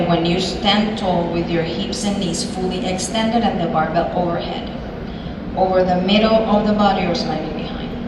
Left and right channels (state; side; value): identical; both; correlation 1.00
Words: when you stand tall with your hips and knees fully extended and the barbell overhead, over the middle of the body or slightly behind.